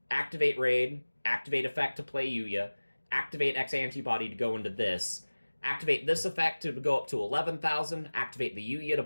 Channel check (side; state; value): both; inverted; correlation -1.00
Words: activate Raid, activate Effect to play Yuya, activate X Antibody to go into this, activate this effect to go up to 11,000, activate the Yuya to